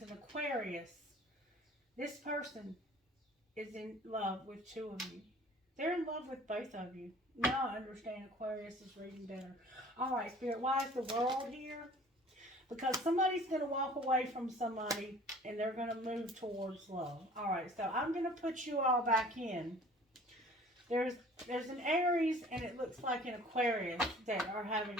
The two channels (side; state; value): both; normal; correlation 0.49